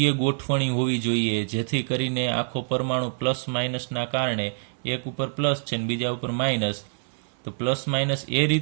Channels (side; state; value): left; silent; 61 dB below the other